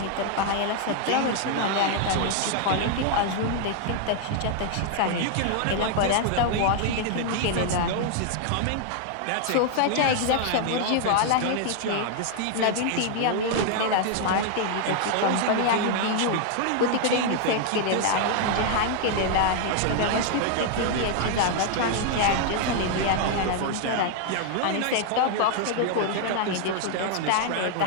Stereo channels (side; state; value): both; different; correlation 0.00